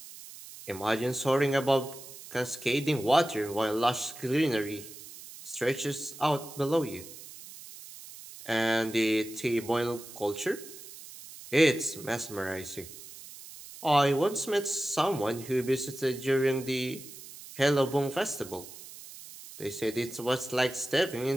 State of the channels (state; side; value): noise; right; hiss, 15 dB below the sound